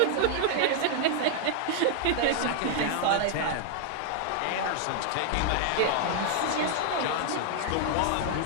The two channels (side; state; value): both; different; correlation -0.01